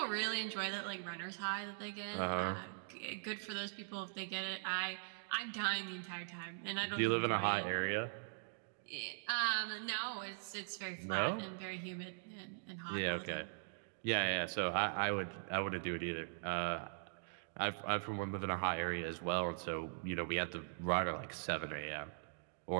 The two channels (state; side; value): silent; left; digital silence